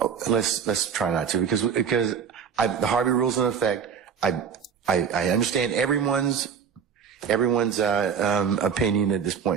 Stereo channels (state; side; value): quieter; left; 7.0 dB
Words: let's try not to, because the Harvey rule's in effect. I understand everyone's opinion at this